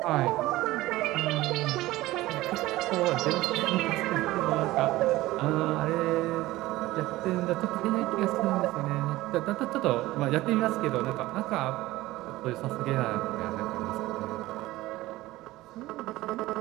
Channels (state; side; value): quieter; left; 17.6 dB